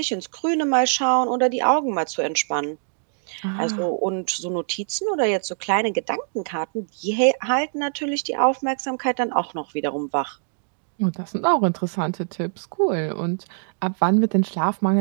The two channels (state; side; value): silent; left; digital silence